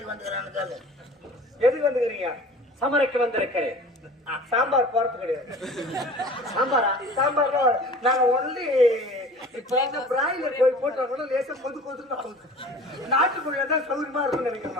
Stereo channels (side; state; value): both; normal; correlation 0.43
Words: வந்துக்கிறான்னு கேளு எதுக்கு வந்துக்கிறீங்க சமரைக்கு வந்திருக்கிறேன். சாம்பார் போறது கிடையாது சாம்பாரா? சாம்பார் நாங்க ஒன்லி இப்ப வந்து பிராய்லர் போய் போட்டா கூட லேசா கொது கொதுன்னு நாட்டுக்குள்ள தான் சௌகரியமா இருக்கும்னு